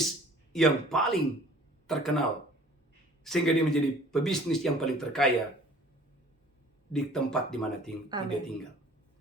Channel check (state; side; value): normal; both; correlation 0.50